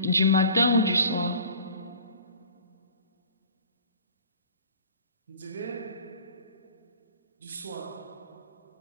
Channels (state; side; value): inverted; both; correlation -0.45